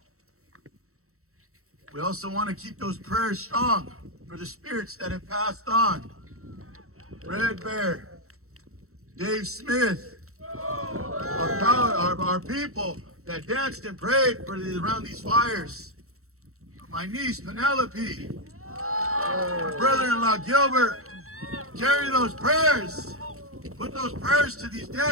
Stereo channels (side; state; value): left; late; 0.63 ms